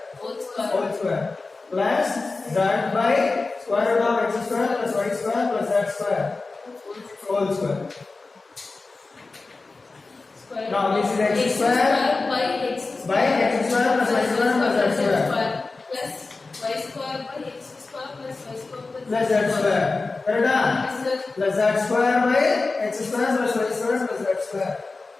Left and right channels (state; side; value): quieter; right; 3.7 dB